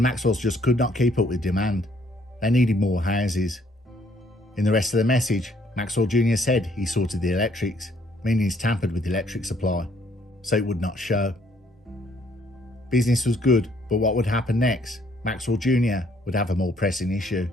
Maxwells just could not keep up with demand. They needed more houses. In the rest of the message, Maxwell Jr. said he sorted the electrics, meaning he's tampered with the electric supply, so it would not show. Business was good, but what would happen next? Maxwell Jr. would have a more pressing issue.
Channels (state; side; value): normal; both; correlation 0.65